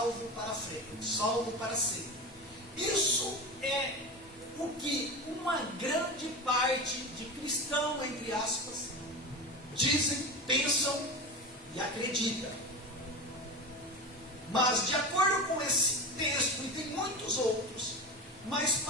para frente, salvo para sempre. Isso é o que uma grande parte de cristãos, entre aspas, dizem, pensam e acreditam. Mas de acordo com esse texto, e tem muitos outros, mas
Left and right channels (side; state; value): both; normal; correlation 0.25